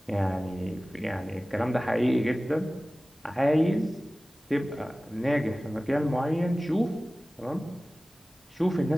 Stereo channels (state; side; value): normal; both; correlation 0.97